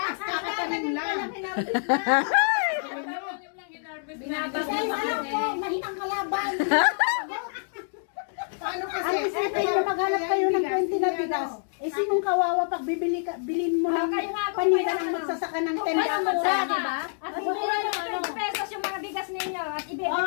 kakatanim lang. Binabagay mo. Mahinang kalaban. Paano kasi? Ang isipin nyo, maghanap kayo ng 20 na bigas. Eh, sinong kawawa pag bilhin mo ng Kayo nga, kung panida may ng magsasaka ng Kung 10 may na mura, di ba? At bibili ng 20 pesos yung mga bigas ninyo at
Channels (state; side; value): silent; right; digital silence